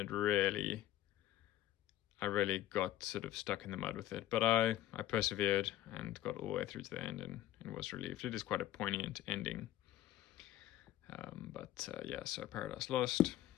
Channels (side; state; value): right; quieter; 13.7 dB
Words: really got sort of stuck in the mud with it. But I persevered and got all the way through to the end and was relieved. It is quite a poignant ending. So Paradise Lost,